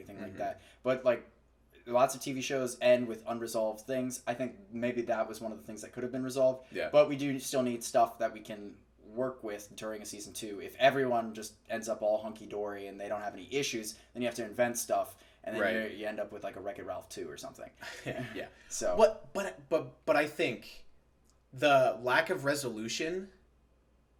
like that, but like. Lots of TV shows end with unresolved things. I think maybe that was one of the things that could have been resolved. Yeah. But we do still need stuff that we can work with during a season 2. If everyone just ends up all hunky-dory and they don't have any issues, then you have to invent stuff, and then you end up with like a Wreck-It Ralph 2 or something. Yeah. So. But I think the lack of resolution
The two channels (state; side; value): identical; both; correlation 1.00